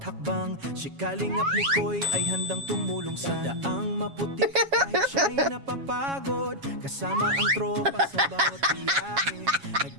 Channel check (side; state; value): left; late; 7.3 ms